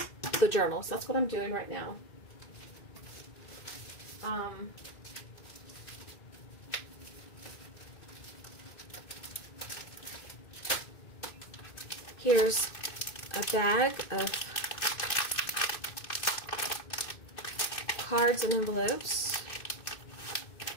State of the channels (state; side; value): late; right; 2.6 ms